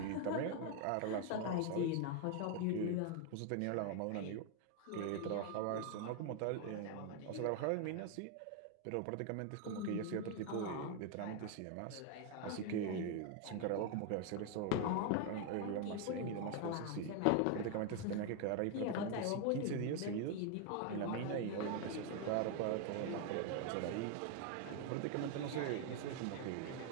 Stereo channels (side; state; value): both; different; correlation 0.00